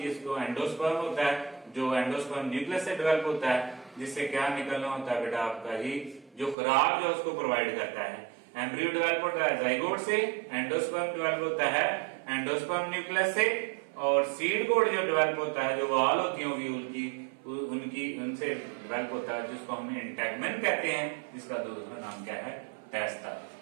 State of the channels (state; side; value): drops out; left; at 6.6 s